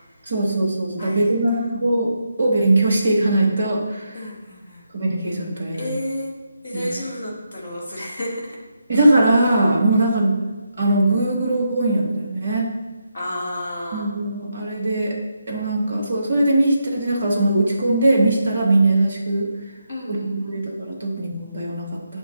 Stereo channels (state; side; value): inverted; both; correlation -0.82